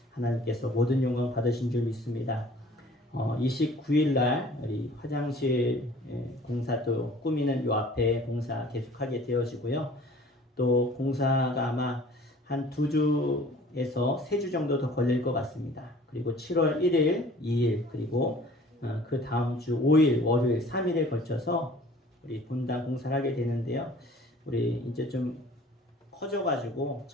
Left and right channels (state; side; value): normal; both; correlation 0.50